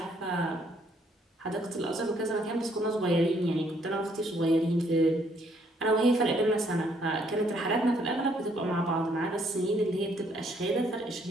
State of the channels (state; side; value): normal; both; correlation 0.67